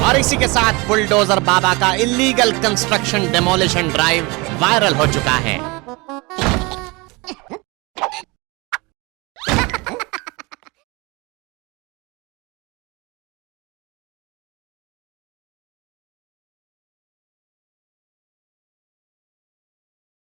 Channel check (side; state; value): left; quieter; 25.9 dB